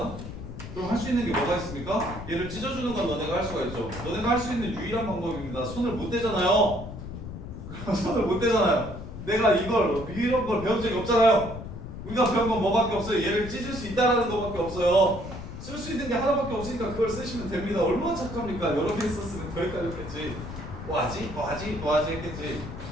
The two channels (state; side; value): noise; left; rumble, 10 dB below the sound